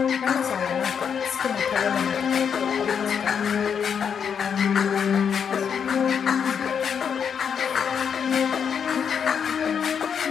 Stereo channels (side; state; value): right; quieter; 7.2 dB